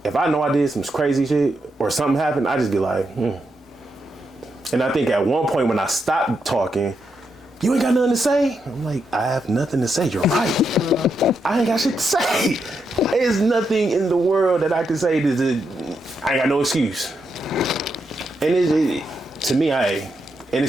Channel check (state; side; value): normal; both; correlation 0.82